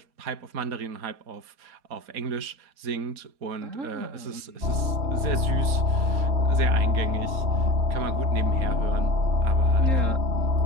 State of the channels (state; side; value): late; left; 4.2 ms